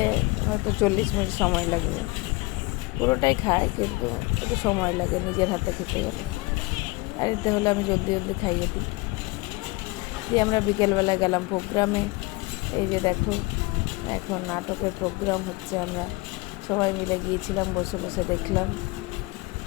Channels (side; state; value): right; quieter; 23.3 dB